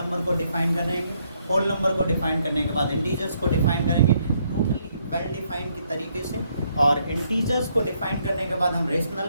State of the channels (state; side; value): inverted; both; correlation -0.72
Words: को डिफाइन करेंगे। होल नंबर को डिफाइन करने के बाद इंटीजर्स को डिफाइन करेंगे टोटली वेल डिफाइन के तरीके से, और इंटीजर्स को डिफाइन करने के बाद हम रेशनल